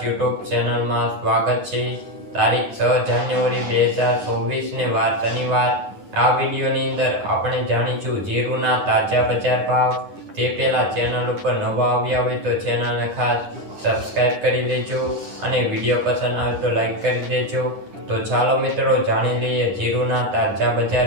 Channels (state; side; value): late; left; 9.9 ms